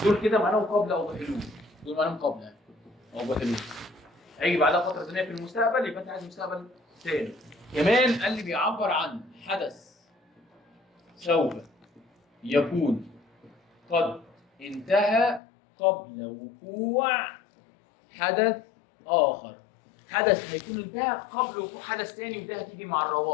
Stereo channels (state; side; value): drops out; right; at 15.4 s